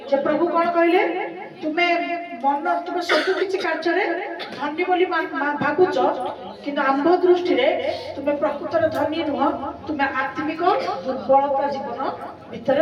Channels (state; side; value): identical; both; correlation 1.00